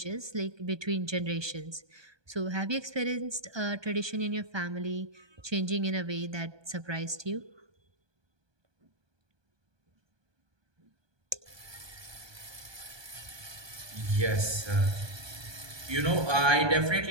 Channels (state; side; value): late; left; 1.2 ms